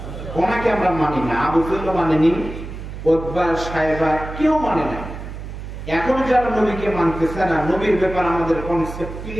ওনাকে আমরা মানি না। আবু জেহেল মানেনি, উতবা, সাইবা কেউ মানে না। এখন যারা নবীকে মানতেছে না, নবীর ব্যাপার আমাদের কনসেপ্ট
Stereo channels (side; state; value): right; noise; hum, 10 dB below the sound